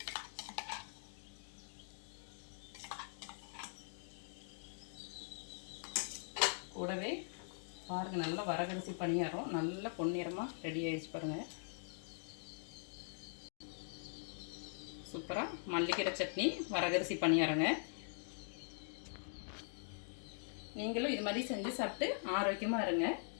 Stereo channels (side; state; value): right; silent; digital silence